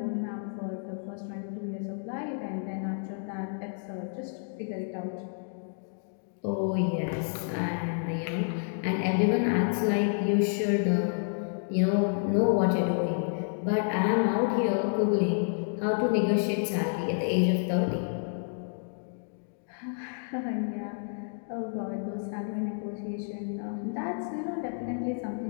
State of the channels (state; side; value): silent; right; digital silence